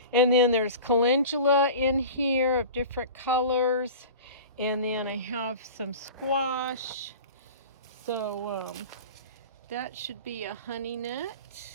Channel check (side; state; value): both; inverted; correlation -0.36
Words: And then there's calendula in here of different colors. And then I have some squash. So that should be a honey nut.